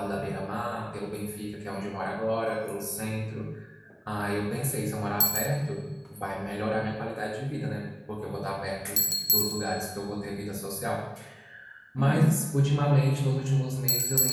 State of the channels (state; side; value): identical; both; correlation 1.00